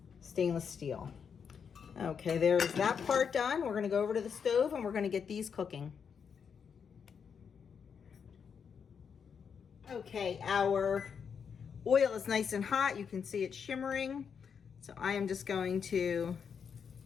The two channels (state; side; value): quieter; right; 6.8 dB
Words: stainless steel. Okay, there's that part done. We're going to go over to the stove and we're going to get these cooking. Okay, our oil is nice and hot. You can see it shimmering. So I am just going to